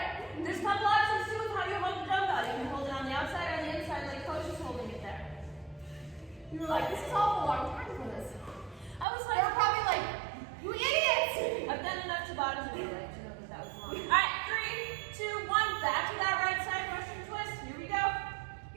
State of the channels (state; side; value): drops out; left; at 9.1 s